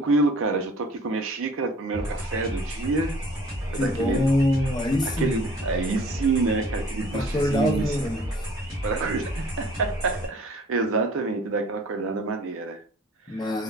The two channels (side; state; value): both; normal; correlation 0.51